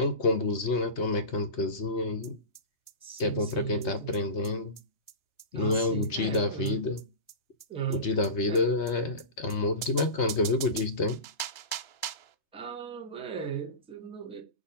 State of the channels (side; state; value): right; late; 3.3 ms